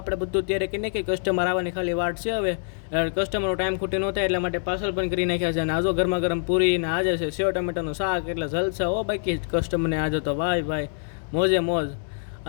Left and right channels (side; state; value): right; silent; 62 dB below the other